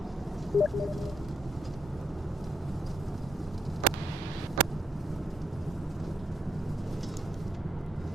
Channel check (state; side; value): normal; both; correlation 0.77